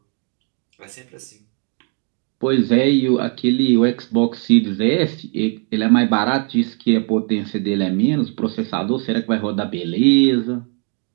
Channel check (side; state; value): left; quieter; 39.3 dB